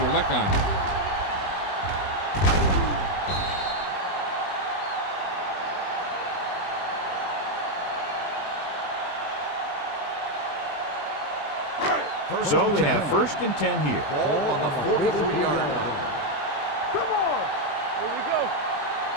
lick on you. So they have 1st and 10 here. Ball on the 43-yard line. Come on. Here we go.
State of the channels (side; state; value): right; late; 20 ms